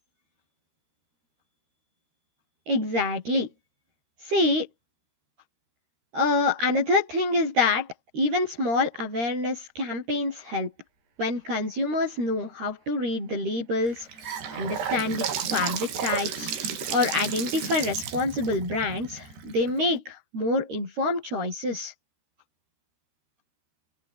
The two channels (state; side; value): late; left; 13 ms